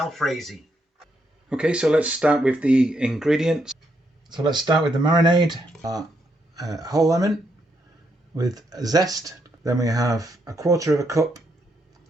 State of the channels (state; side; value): normal; both; correlation 0.78